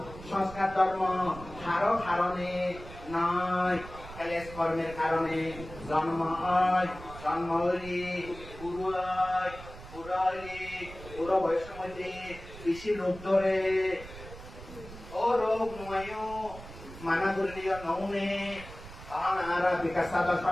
সংস্কার ধর্ম হারো কারণে নয় ক্লেশ কর্মের কারণে জন্ম হয় জন্ম হইলি বুড়ো হয় বুড়ো হইলি বুড়ো বয়সের মধ্যে বেশি রোগ ধরে ও রোগ নয় মানা করলিও নৌনে তখন আর বিকাশ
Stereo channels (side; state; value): right; noise; rumble, 15 dB below the sound